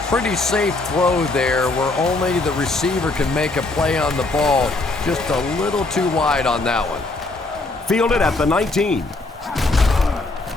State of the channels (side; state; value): right; quieter; 3.2 dB